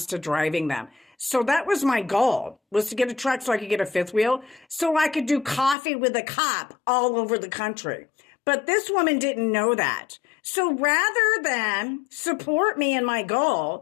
driving them. So that was my goal, was to get a truck so I could get a fifth wheel so I could do coffee with a cop all over the country. But this woman didn't know that. So rather than support me in my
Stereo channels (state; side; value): drops out; right; at 5.8 s